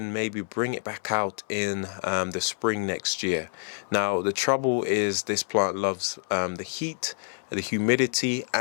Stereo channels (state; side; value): silent; right; 60 dB below the other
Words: maybe bring it back out in the spring next year. Now the trouble is this plant loves the heat, the humidity,